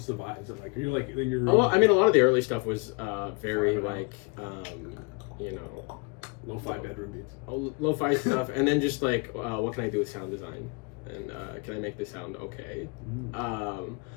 the vibe? Is it like you're like in your? Oh, well, I mean, a lot of the early stuff was very like lo-fi bedroom beats. Lo-fi stuff, and then just like what can I do with sound design, and can I make this sound okay?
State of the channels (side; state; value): right; quieter; 31.7 dB